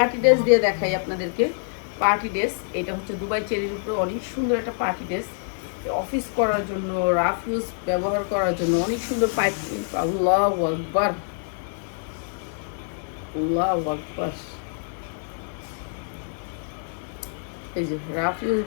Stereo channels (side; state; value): right; silent; 61 dB below the other